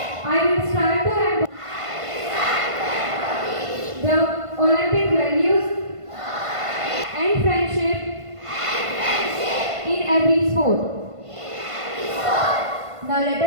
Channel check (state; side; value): late; left; 1.5 ms